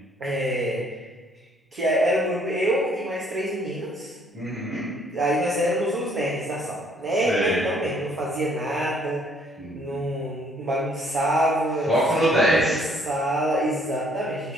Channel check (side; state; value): both; normal; correlation 0.63